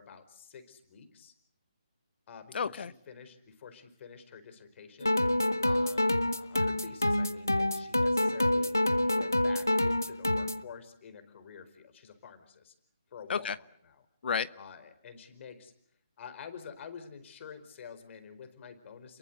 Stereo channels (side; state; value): both; inverted; correlation -0.92